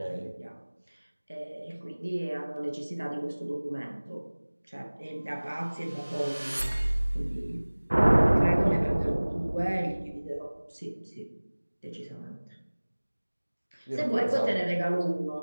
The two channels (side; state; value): both; inverted; correlation -1.00